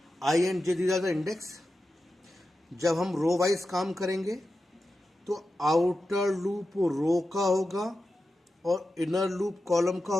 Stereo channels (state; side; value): normal; both; correlation 0.91